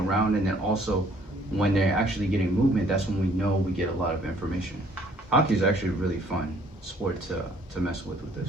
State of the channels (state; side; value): normal; both; correlation 0.60